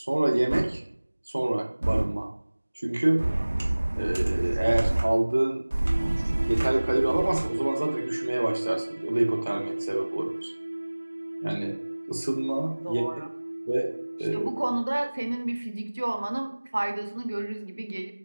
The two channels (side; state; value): both; inverted; correlation -1.00